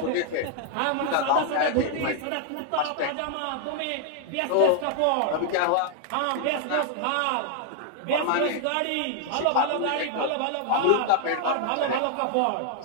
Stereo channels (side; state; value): both; different; correlation 0.00